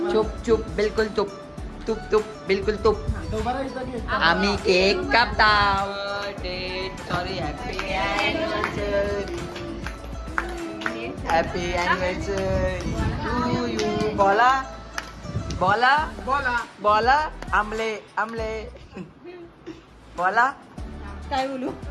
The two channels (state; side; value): identical; both; correlation 1.00